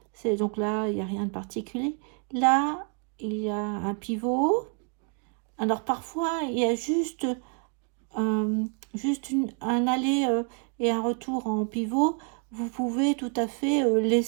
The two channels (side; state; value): left; quieter; 39.4 dB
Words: c'est donc là, il n'y a rien de particulier. Là, il y a un pivot. Alors parfois, il y a juste un aller et un retour en pivot. Vous pouvez tout à fait